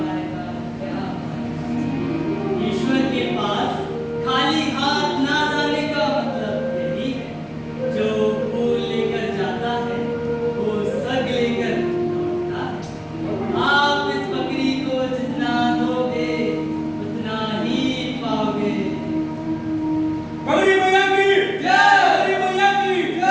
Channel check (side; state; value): both; identical; correlation 1.00